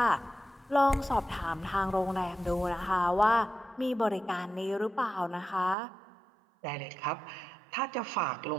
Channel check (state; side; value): drops out; left; at 5.8 s